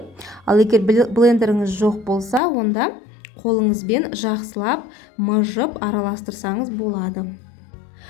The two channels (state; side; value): drops out; right; at 2.4 s